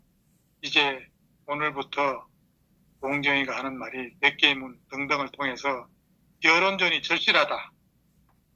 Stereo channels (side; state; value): both; identical; correlation 1.00